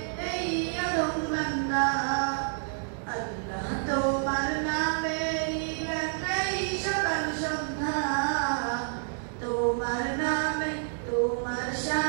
এই আদম বান্দা। আল্লাহ তোমার নামেরই গান গাই সকাল সন্ধ্যা, তোমার নামে তোমার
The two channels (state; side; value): silent; left; digital silence